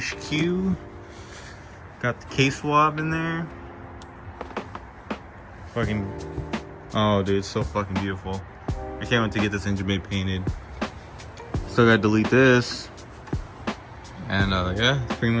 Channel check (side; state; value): both; identical; correlation 1.00